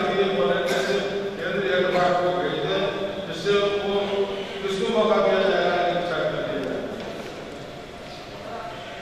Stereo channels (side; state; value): both; identical; correlation 1.00